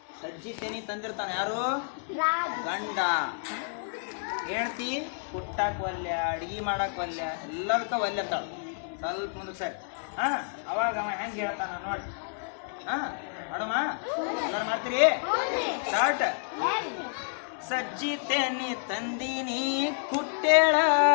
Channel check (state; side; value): silent; right; digital silence